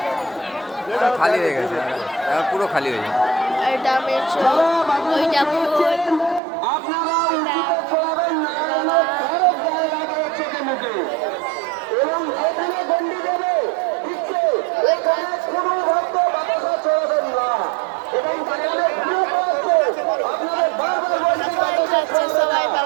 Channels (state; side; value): drops out; left; at 6.4 s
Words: খালি হয়ে গেছে, পুরো খালি হয়ে যাবে। এটা মেছো ওইটা ফুল আপনারা চলাবেন না, এবং এখানে গন্ডি দেবে দিচ্ছে, এখানে কোনো ভক্ত বাতাসা চলাবেন না, এবং সেখানে গ্রুপ আছে আপনাদের বারবার বলছে সবাই খাচ্ছে, সবাই